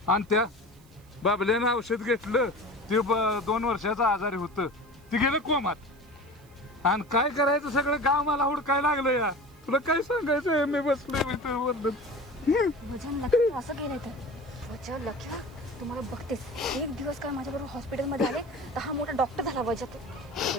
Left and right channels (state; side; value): noise; right; hiss, 29 dB below the sound